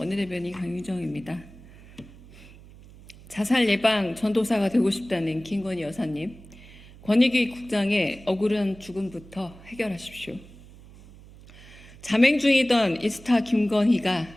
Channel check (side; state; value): right; noise; hum, 21 dB below the sound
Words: 강유정입니다. 자살 예방 전도사가 되고 싶다는 김건희 여사님, 권익위 국장의 억울한 죽음부터 해결하십시오. 잠행 중이던 이스타 김건희가